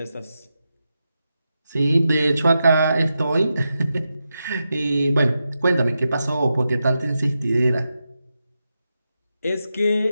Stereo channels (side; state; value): both; inverted; correlation -0.89